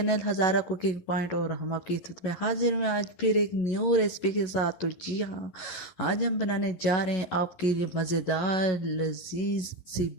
हज़ारा कुकिंग पॉइंट और हम आपकी खिदमत में हाजिर हैं आज फिर एक न्यू रेसिपी के साथ। तो जी हाँ, आज हम बनाने जा रहे हैं आपके लिए मज़ेदार लजीज सी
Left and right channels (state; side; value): late; right; 11 ms